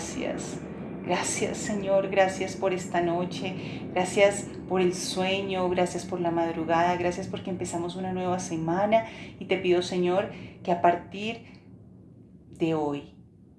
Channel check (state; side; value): identical; both; correlation 1.00